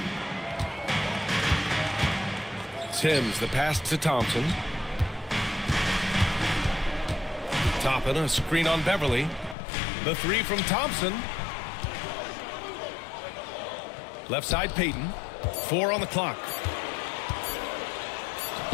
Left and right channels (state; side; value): drops out; right; at 9.6 s